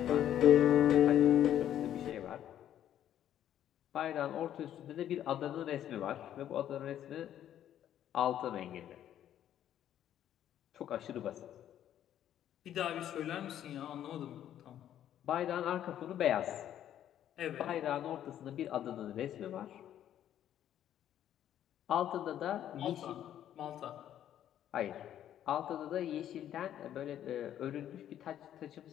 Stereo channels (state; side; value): quieter; right; 11.0 dB